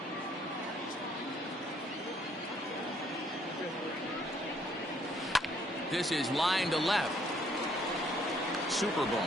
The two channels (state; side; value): normal; both; correlation 0.66